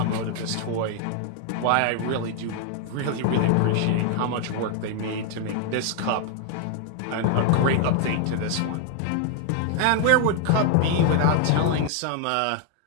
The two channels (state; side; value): different; both; correlation 0.00